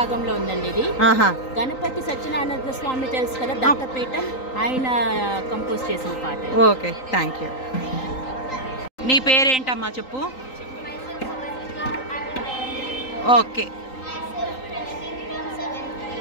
రాగంలో ఉందండి ఇది. ఆహా. గణపతి సత్యనారాయణ స్వామి తెలుసు కదా, దత్తపీఠం, ఆయన కంపోజ్ చేసిన పాట. Okay, thank you. నీ పేరేంటమ్మా చెప్పు. Okay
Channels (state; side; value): late; right; 3.9 ms